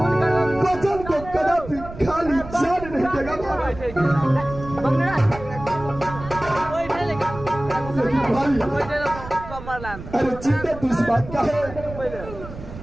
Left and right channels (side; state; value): right; noise; rumble, 13 dB below the sound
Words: वचन को कदापि खाली जान नहीं देगा भाई। अरे चिंता तो इस बात का है